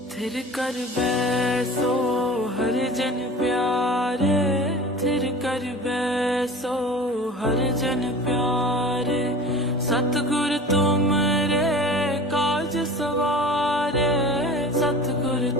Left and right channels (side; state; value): both; normal; correlation 0.39